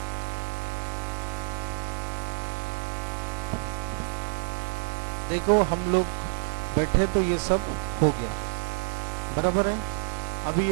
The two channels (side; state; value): left; silent; digital silence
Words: देखो हम लोग बैठे तो ये सब हो गया, बराबर है। अभी